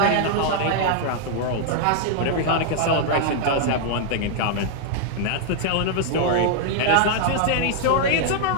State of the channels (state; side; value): different; both; correlation 0.00